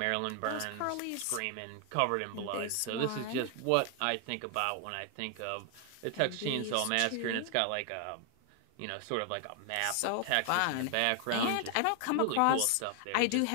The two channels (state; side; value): different; both; correlation 0.00